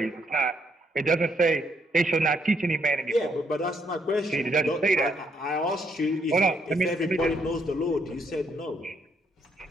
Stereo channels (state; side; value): normal; both; correlation 0.73